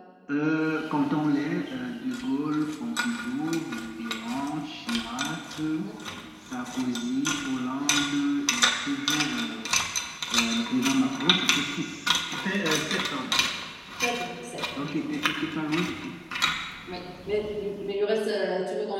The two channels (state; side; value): identical; both; correlation 1.00